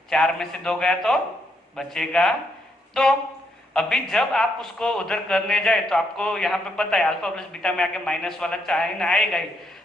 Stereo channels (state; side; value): normal; both; correlation 0.76